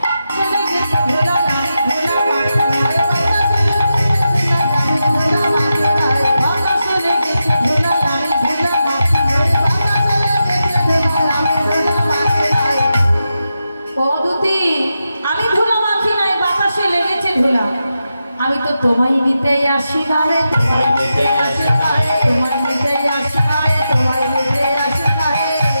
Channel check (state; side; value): inverted; both; correlation -0.89